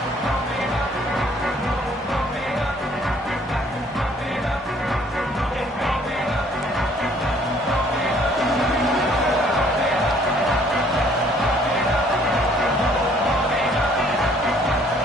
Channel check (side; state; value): both; normal; correlation 0.60